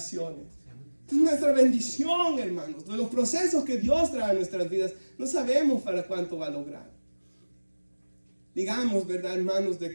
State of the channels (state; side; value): inverted; both; correlation -1.00